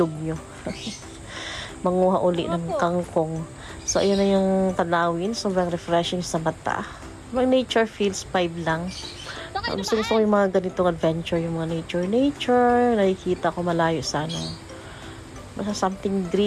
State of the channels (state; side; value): identical; both; correlation 1.00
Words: nyo. Manguha uli ng kangkong. So, ayun na yung tanawin. Sobrang refreshing sa mata. Mga nature feels 5 lang. Gusto ko yung mga ganitong adventure, yung mga nature. Nakikita ko malayo sa basta something